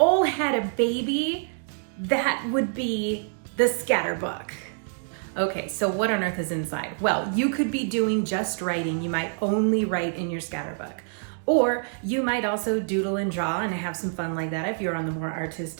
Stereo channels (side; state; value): left; silent; digital silence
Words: had a baby, that would be the scatterbook. Okay, so what on earth is inside? Well, you could be doing just writing. You might only write in your scatterbook. Or you might also doodle and draw and have some fun like that if you're on the more